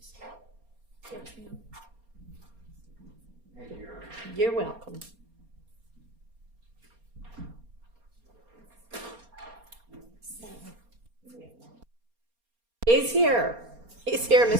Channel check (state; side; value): late; left; 4.3 ms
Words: You're welcome. He's here. He's here,